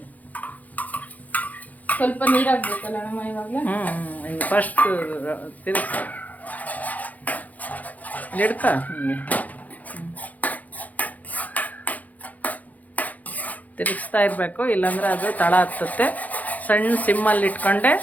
ಸ್ವಲ್ಪ ನೀರು ಹಾಕ್ಬೇಕಲ್ಲ ನಮ್ಮ ಇವಾಗಲೇ. ಫಸ್ಟ್ ತಿರುಗ್ತಾ ಹಿಡ್ಕ, ತಿರುಗಿಸ್ತಾ ಇರಬೇಕು, ಇಲ್ಲಾಂದ್ರೆ ಅದು ತಳ ಹತ್ತುತ್ತೆ. ಸಣ್ಣ ಸಿಮ್ಮಲ್ಲಿ ಇಟ್ಕೊಂಡೆ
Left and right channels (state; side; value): late; right; 0.078 ms